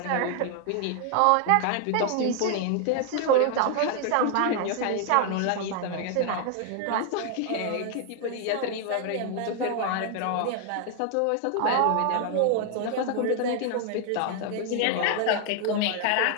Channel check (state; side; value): different; both; correlation 0.00